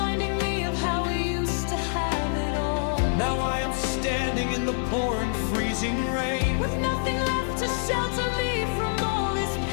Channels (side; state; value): right; silent; 61 dB below the other